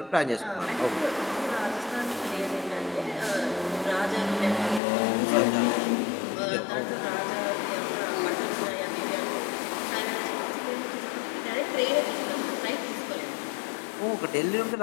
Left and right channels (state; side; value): drops out; right; at 4.8 s